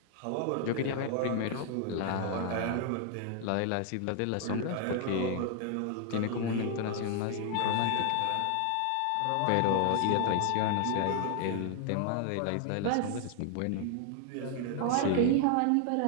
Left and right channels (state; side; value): different; both; correlation 0.00